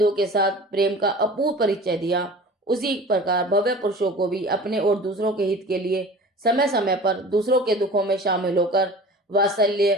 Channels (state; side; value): normal; both; correlation 0.40